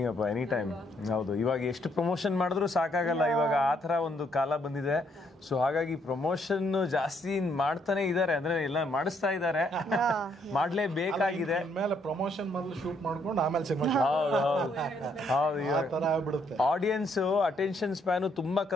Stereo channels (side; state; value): both; normal; correlation 0.71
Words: ಅಪ್ಪ, ಎನಿ ಟೈಮ್. ಹೌದು, ಇವಾಗ ಎಷ್ಟು ಪ್ರಮೋಷನ್ ಮಾಡಿದ್ರು ಸಾಕಾಗಲ್ಲ, ಇವಾಗ ಆ ಥರ ಒಂದು ಕಾಲ ಬಂದಿದೆ. ಸೊ ಹಾಗಾಗಿ ಪ್ರಮೋಷನ್ ಜಾಸ್ತಿ ಮಾಡ್ತಾನೆ ಇದ್ದಾರೆ, ಅಂದ್ರೆ ಎಲ್ಲ ಮಾಡಿಸ್ತಾ ಇದ್ದಾರೆ, ಮಾಡ್ಲೇಬೇಕಾಗಿದೆ. ಮೇಲೆ ಪ್ರಮೋಷನ್ ಮೊದಲು ಶೂಟ್ ಮಾಡ್ಕೊಂಡು ಆಮೇಲೆ ಸಿನಿಮಾ. ಹೌದು, ಆಡಿಯನ್ಸ್ ಅಟೆನ್ಷನ್ ಸ್ಪ್ಯಾನು ತುಂಬಾ